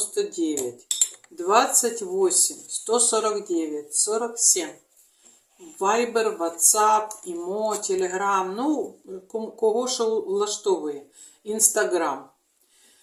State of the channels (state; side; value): identical; both; correlation 1.00